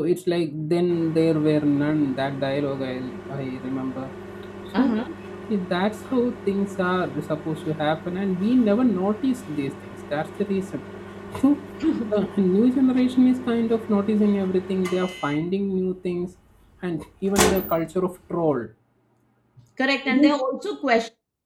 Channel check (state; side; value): identical; both; correlation 1.00